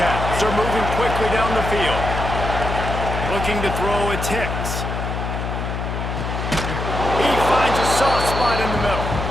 are moving quickly down the field. Looking to throw, it's Hicks. He finds a soft spot in the middle.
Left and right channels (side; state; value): left; noise; hum, 4 dB below the sound